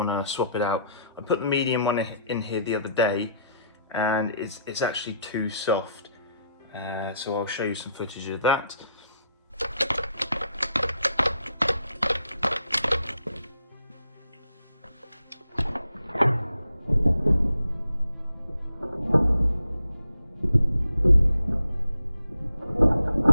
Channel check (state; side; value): inverted; both; correlation -0.74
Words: to swap it out. I put the medium one in here the other day, and it's actually too soft, so I'll show you some footage of that.